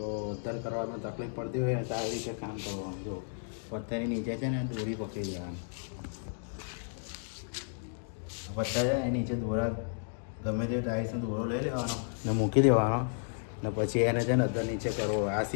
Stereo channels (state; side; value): silent; right; digital silence